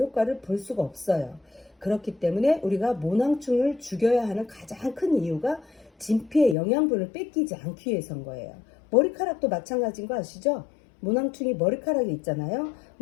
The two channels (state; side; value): drops out; right; at 6.6 s